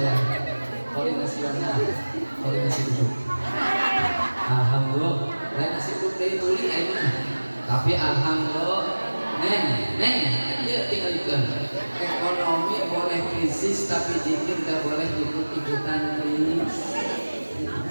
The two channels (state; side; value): inverted; both; correlation -1.00